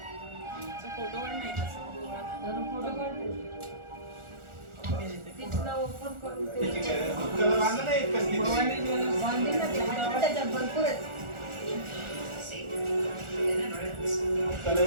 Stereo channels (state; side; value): late; left; 1.4 ms